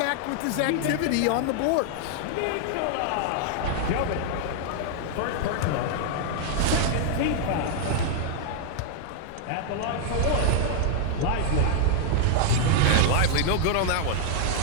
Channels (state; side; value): different; both; correlation 0.00